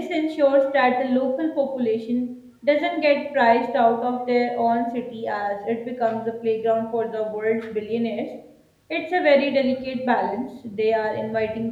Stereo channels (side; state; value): both; identical; correlation 1.00